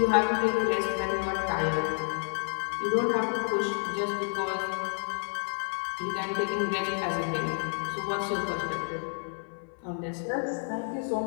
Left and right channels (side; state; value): right; silent; 58 dB below the other